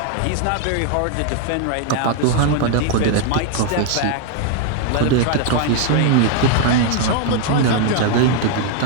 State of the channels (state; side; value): different; both; correlation 0.00